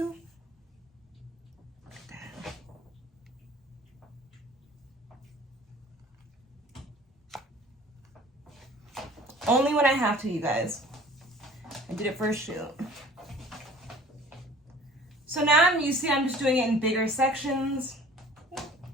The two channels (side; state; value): both; normal; correlation 0.48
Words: Look at that. Only when I have to, you guys. I did it for a shoot. So now I'm just doing it in bigger sections,